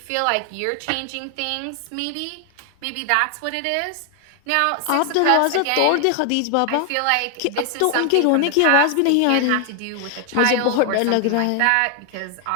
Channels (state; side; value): different; both; correlation 0.00